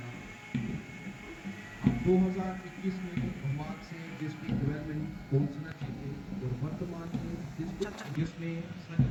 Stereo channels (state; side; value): identical; both; correlation 1.00